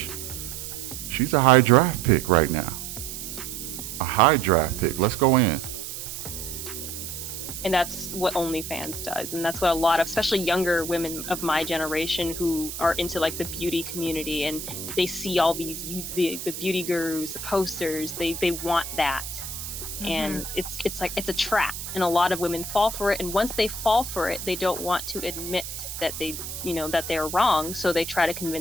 She's a high draft pick right now. A high draft pick. Let's go in. And that's what OnlyFans does. And that's what a lot of, especially younger women of my generation who are into like the beauty community, and they see all these, the beauty gurus, the posters, they want that. Mm-hmm. And it's like, it's a trap. And a lot of women fall for it. And once they fall for it, they don't want to admit that that they're wrong. So they try to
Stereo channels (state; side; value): noise; right; hiss, 8 dB below the sound